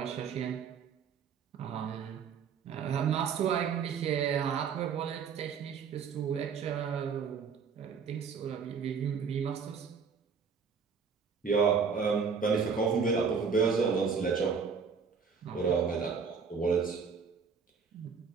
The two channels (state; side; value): quieter; left; 6.0 dB